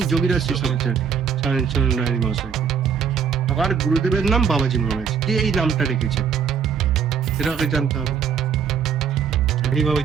যোগীরাজ শেষাচার্য রায় মহাশয়কে। আমার গুরুদেবের নাম বাবাজি মহারাজ। কে এই নামটা রেখেছে? সেটা আগে জানতে হবে।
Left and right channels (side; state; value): left; quieter; 7.0 dB